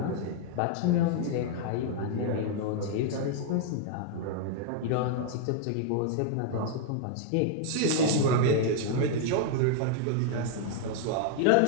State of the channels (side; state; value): both; different; correlation -0.01